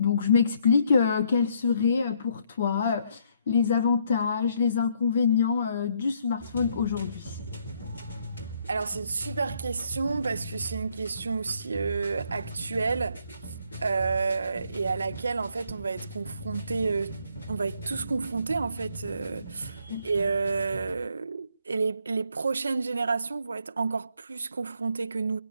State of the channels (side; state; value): both; inverted; correlation -0.70